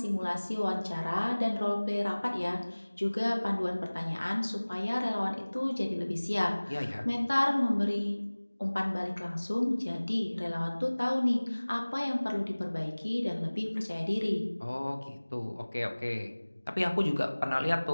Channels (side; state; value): both; inverted; correlation -1.00